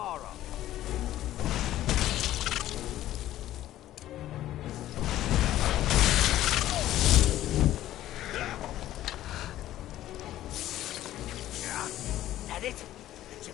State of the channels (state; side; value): quieter; right; 13.7 dB